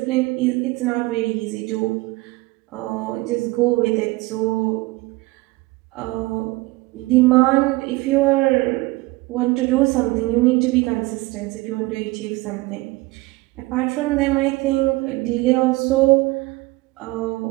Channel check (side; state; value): left; quieter; 21.5 dB